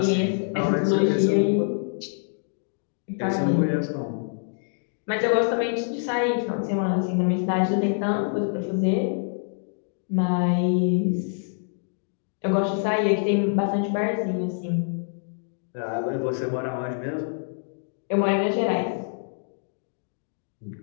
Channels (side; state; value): right; silent; digital silence